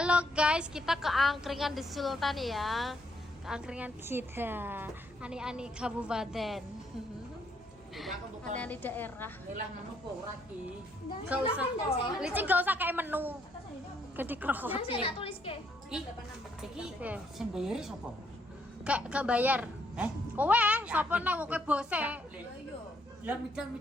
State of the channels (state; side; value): normal; both; correlation 0.71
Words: guys, kita ke angkringan di Sultan ya. Ke angkringan kita. Ani-ani kabupaten. Ani-ani daerah. Gak usah. Licin gak usah kayak menu. Gede krohot. Jangan saya tulis ke. Iki sing bayari sapa? Gak bayar. Kowe sapa nang kowe bose? Lah